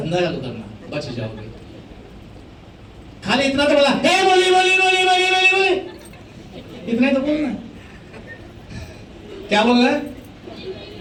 चालू करना, बच जाओगे। खाली इतना तो बोला, हे बोली बोली बोली बोली बोली बोली, इतना तो बोलना। क्या बोल रहा है?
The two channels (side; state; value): both; identical; correlation 1.00